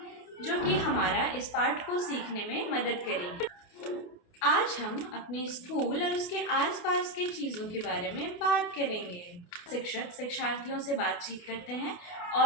जो कि हमारा इस पाठ को सीखने में मदद करेगी। आज हम अपने स्कूल और उसके आसपास के चीज़ों के बारे में बात करेंगे। शिक्षक शिक्षार्थियों से बातचीत करते हैं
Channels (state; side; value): late; right; 28 ms